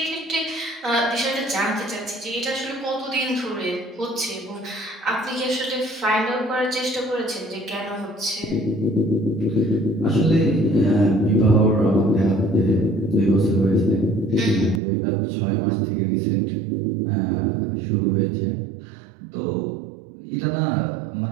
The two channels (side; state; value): left; drops out; at 14.8 s